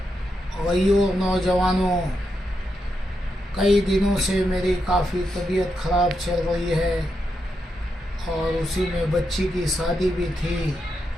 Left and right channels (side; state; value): both; normal; correlation 0.84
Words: भाइयों, नौजवानों, कई दिनों से मेरी काफ़ी तबीयत ख़राब चल रही है और उसी में बच्ची की शादी भी थी।